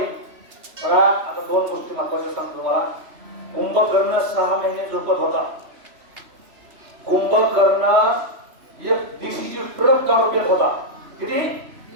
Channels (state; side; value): late; left; 3.0 ms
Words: बघा आता 2 गोष्टी महत्वाच्या सांगतो तुम्हाला कुंभकर्ण 6 महिने झोपत होता कुंभकर्ण एक दिवशीची ट्रक दारू पेत होता किती